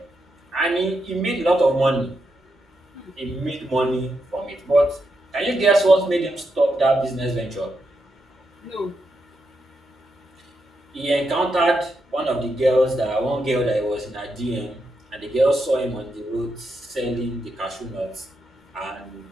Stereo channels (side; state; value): both; normal; correlation 0.83